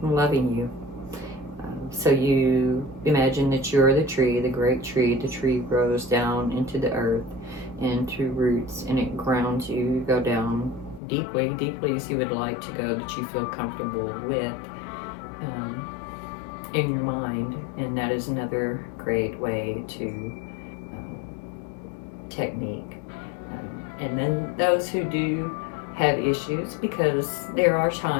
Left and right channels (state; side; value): drops out; right; at 11.0 s